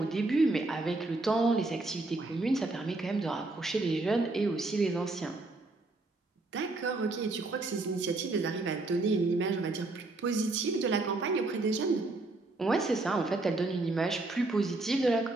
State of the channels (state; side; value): quieter; left; 3.1 dB